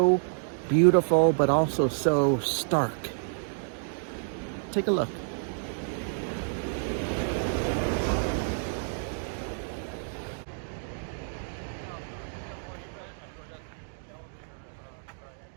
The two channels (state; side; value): silent; left; digital silence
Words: beautiful, but also so stark. Take a look.